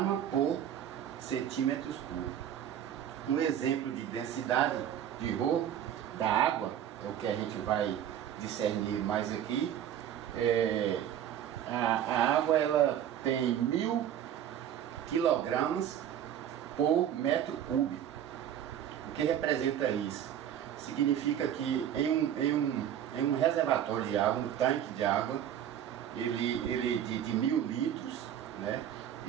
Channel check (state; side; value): quieter; left; 10.1 dB